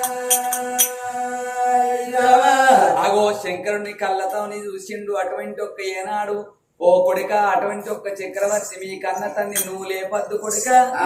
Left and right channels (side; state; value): both; identical; correlation 1.00